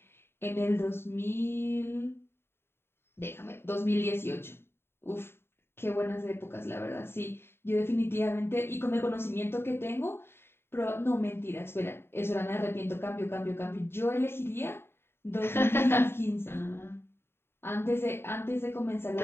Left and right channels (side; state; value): right; late; 0.11 ms